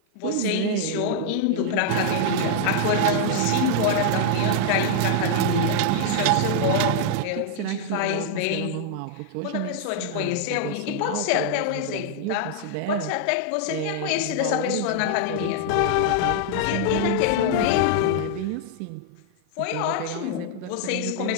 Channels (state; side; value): different; both; correlation -0.01